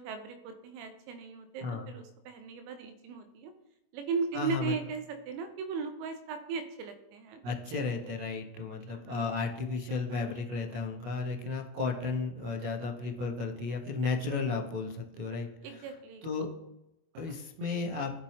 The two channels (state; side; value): late; left; 25 ms